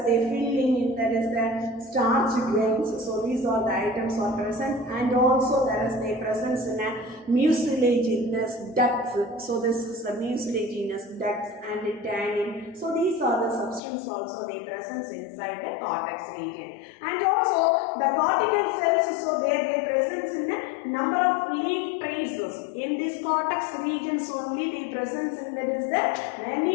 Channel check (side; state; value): right; drops out; at 13.8 s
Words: the filling in that is the starch grains. So these are the items are present, and also there is the presence in a mucilaginous ducts. So this is the mucilaginous ducts and the tannin. So these are the substances also they presence inside the cortex region, and also the cortical cells. So they presence in a number of leaf traces in this cortex regions only. The presence in that is the